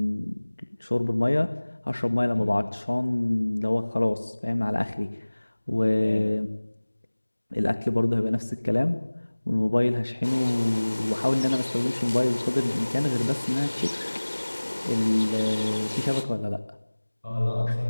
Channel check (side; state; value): both; inverted; correlation -1.00